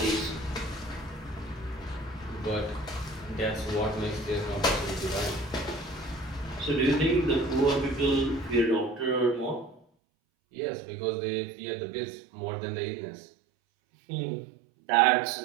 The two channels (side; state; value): left; drops out; at 9.8 s